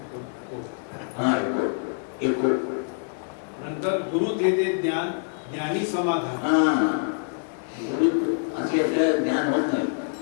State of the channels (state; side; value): silent; right; 61 dB below the other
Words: नंतर गुरु देते ज्ञान, ज्ञानी समाधान. गुरु असल्याशिवाय ज्ञान होत नाही.